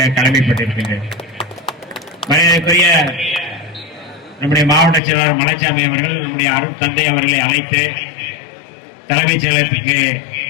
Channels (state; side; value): drops out; right; at 5.0 s